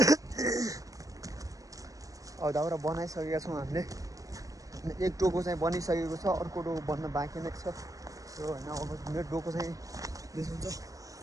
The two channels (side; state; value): left; late; 0.16 ms